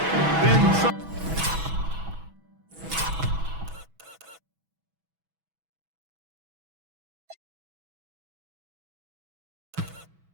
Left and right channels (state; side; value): late; left; 6.1 ms